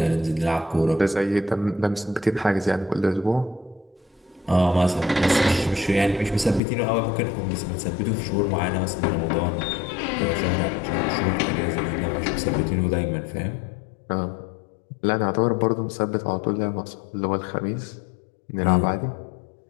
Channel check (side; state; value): right; drops out; at 6.6 s